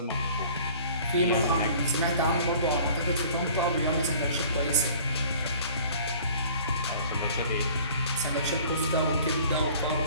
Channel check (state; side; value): inverted; both; correlation -0.49